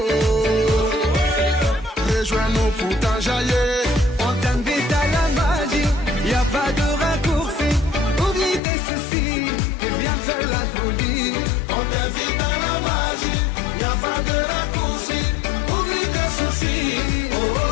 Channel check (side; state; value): right; drops out; at 8.6 s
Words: rejoins-nous pour t'enjailler. On t'invite à la magie, y a pas de raccourci. Oublie tes soucis et viens faire la folie. On t'invite à la magie, y a pas de raccourci. Oublie tes soucis. Oh, oh,